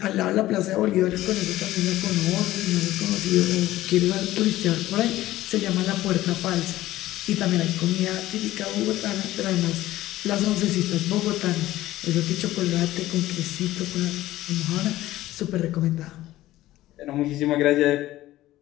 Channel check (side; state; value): right; quieter; 15.6 dB